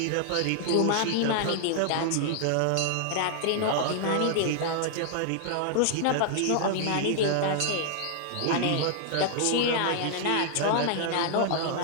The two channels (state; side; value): different; both; correlation -0.01